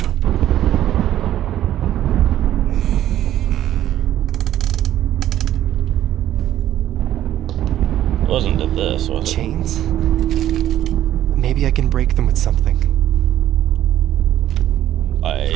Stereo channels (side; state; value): left; quieter; 12.3 dB